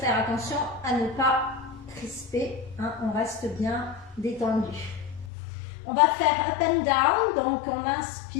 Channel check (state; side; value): drops out; right; at 5.3 s